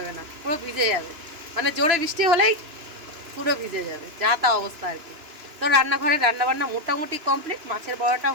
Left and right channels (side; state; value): left; late; 2.9 ms